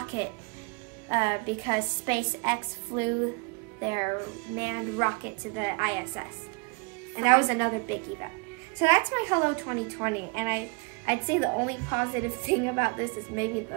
because SpaceX flew their manned rocket to the ISS. And that was another big event. So that's my Hello 2020, and I'd say the only positive thing about this is maybe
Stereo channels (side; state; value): left; quieter; 31.9 dB